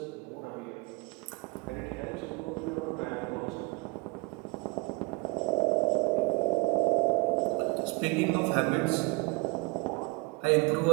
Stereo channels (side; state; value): left; quieter; 26.4 dB